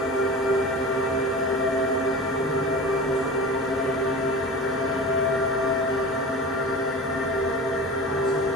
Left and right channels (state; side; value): normal; both; correlation 0.34